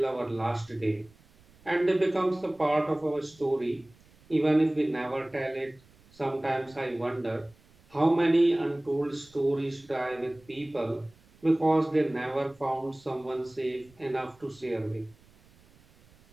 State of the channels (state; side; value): noise; right; rumble, 29 dB below the sound